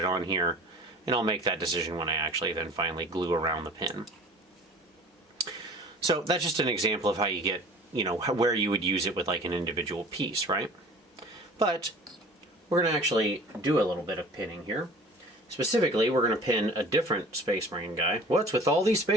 on here. And I'll make that decision when I actually then finally glue around the pin. So that's just an example of how you get, where you would use it with like an individual piece, right? But we're going to actually do a little bit of pinning here. Specifically, we're going to pin a different Space Marine guy. What's with all these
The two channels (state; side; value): normal; both; correlation 0.44